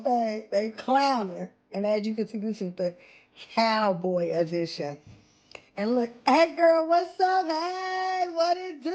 they clowning. And as you can see, this is the cowboy edition. And look, hey girl, what's up? Hey, what it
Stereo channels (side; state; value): both; identical; correlation 1.00